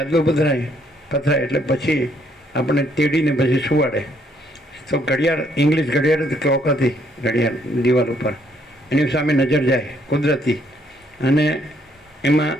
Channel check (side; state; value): both; normal; correlation 0.69